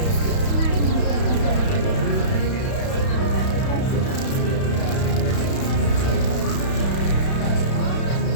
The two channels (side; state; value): right; late; 31 ms